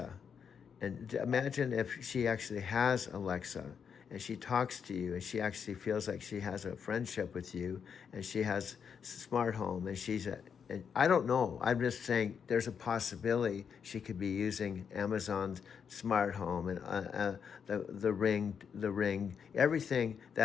And imagine if she actually has Alexa, and she talks to you, and she actually feels like she has a friendship with you, and she has smart home, and and I don't know. I'm just saying there's a possibility she could be using Amazon's smart home and the ring, everything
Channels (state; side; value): quieter; right; 6.9 dB